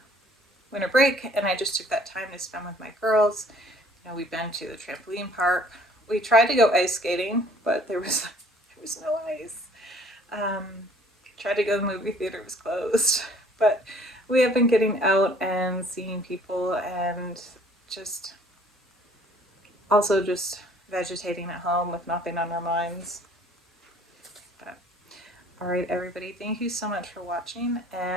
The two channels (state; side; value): normal; both; correlation 0.56